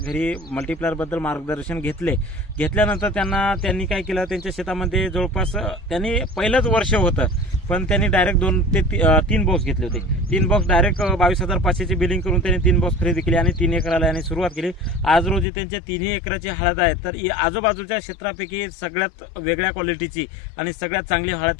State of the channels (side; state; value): right; drops out; at 15.5 s